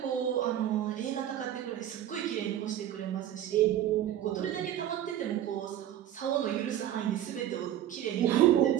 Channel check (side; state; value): left; quieter; 11.5 dB